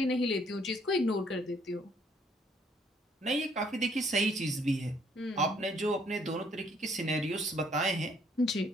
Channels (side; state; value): both; normal; correlation 0.65